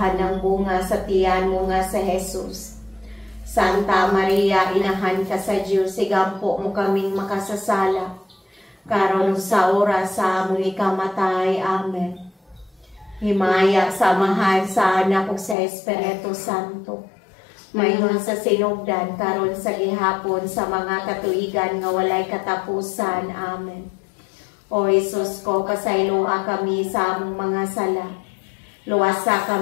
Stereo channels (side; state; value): right; drops out; at 15.6 s